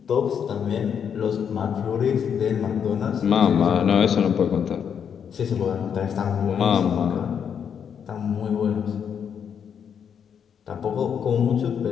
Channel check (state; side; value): quieter; right; 7.7 dB